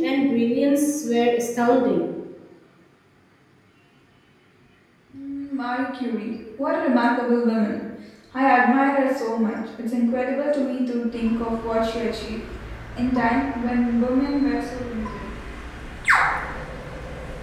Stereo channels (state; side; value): identical; both; correlation 1.00